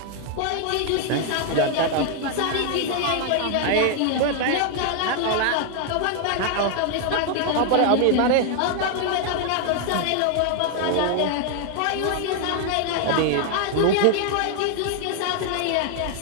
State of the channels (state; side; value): different; both; correlation 0.00